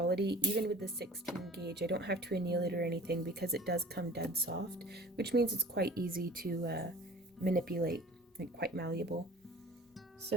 Even with the 16 gauge, I don't have to anneal it or anything because it does come dead soft, which means it's quite easy to manipulate, like quite malleable.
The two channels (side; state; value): both; normal; correlation 0.44